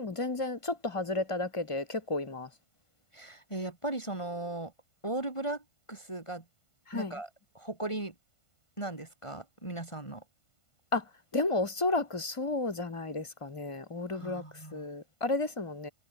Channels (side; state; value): right; late; 1.5 ms